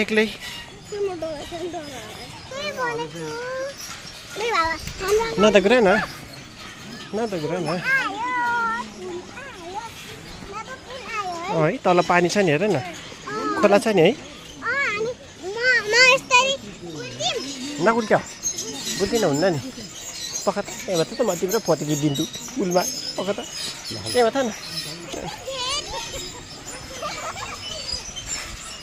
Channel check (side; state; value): both; identical; correlation 1.00